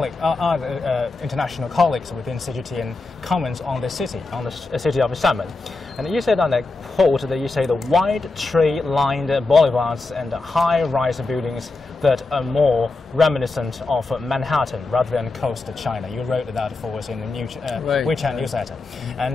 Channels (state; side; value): quieter; right; 3.5 dB